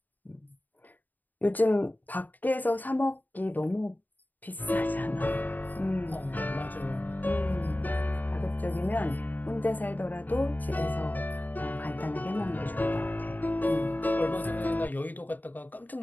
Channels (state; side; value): late; right; 0.085 ms